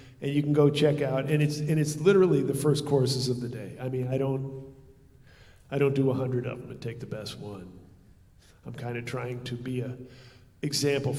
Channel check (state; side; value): identical; both; correlation 1.00